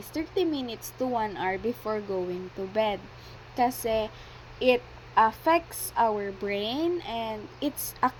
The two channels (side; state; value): both; identical; correlation 1.00